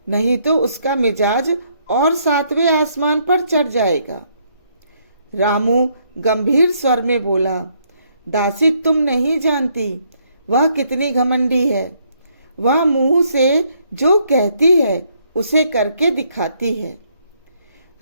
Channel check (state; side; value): inverted; both; correlation -0.71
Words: नहीं तो उसका मिजाज और 7वें आसमान पर चढ़ जाएगा। रामू गंभीर स्वर में बोला, दासी तुम नहीं जानती वह कितनी घमंडी है। वह मुंह से जो कहती है उसे करके दिखाती है।